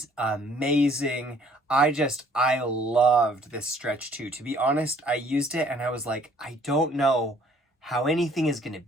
amazing. I loved this Stretch 2. To be honest, I used it and I was like, I don't know how anything is going to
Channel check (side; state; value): both; normal; correlation 0.59